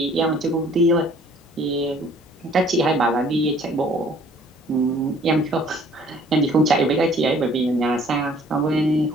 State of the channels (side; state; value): both; normal; correlation 0.56